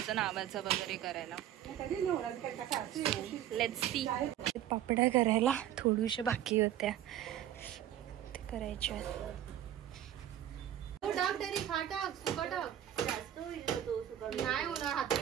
नावाचं वगैरे करायला. Let's see. पापड्या करायला थोड्याशा बाकी होत्या ते करायच्या. नाही होणार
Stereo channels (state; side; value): quieter; left; 11.4 dB